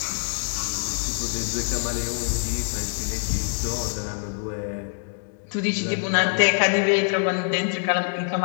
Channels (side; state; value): right; silent; 62 dB below the other